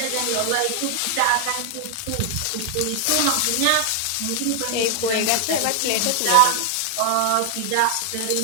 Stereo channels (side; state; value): both; different; correlation 0.00